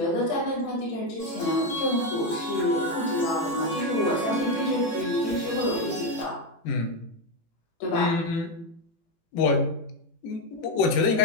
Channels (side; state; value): right; late; 18 ms